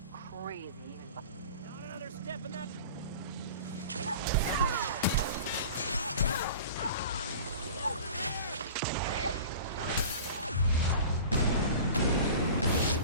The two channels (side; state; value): both; inverted; correlation -0.39